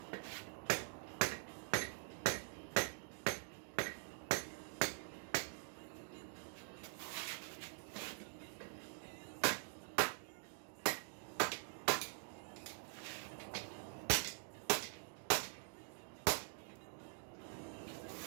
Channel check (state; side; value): silent; left; digital silence